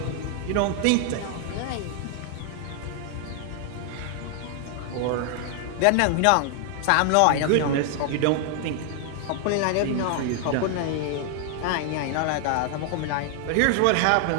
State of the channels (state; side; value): different; both; correlation 0.00